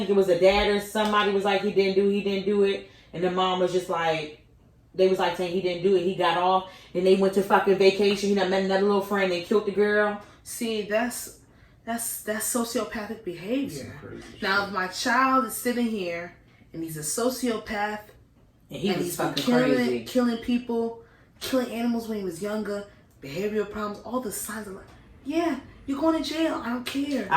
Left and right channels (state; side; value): identical; both; correlation 1.00